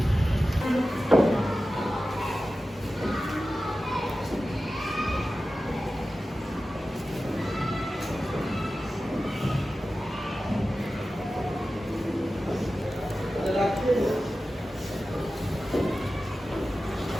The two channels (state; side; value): normal; both; correlation 0.94